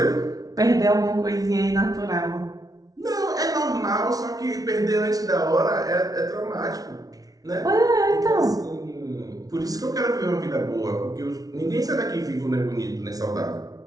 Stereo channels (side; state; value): left; late; 0.18 ms